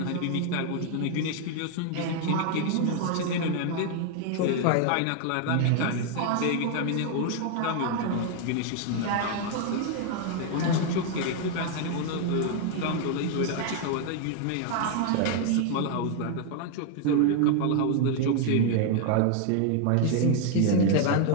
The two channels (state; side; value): different; both; correlation 0.00